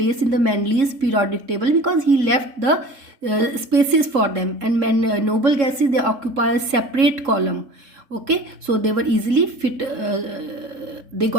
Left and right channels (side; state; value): left; late; 3.7 ms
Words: in the Mendeleev's periodic table because he left the spaces for them, and noble gases, they occupy a separate column. Okay, so they were easily fit, they